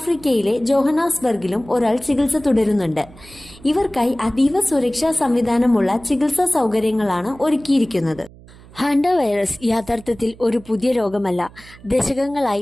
ജോഹനാസ്ബർഗിലും ഒരാൾ ചികിത്സ തുടരുന്നുണ്ട്. ഇവർക്കായി അതീവ സുരക്ഷാ സംവിധാനമുള്ള ചികിത്സാ സൗകര്യങ്ങളാണ് ഒരുക്കിയിരിക്കുന്നത്. ഹാൻഡ വൈറസ് യഥാർത്ഥത്തിൽ ഒരു പുതിയ രോഗമല്ല.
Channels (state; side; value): noise; right; hum, 22 dB below the sound